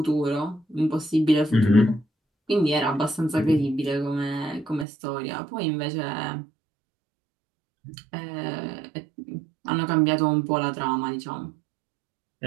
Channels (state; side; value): drops out; left; at 4.9 s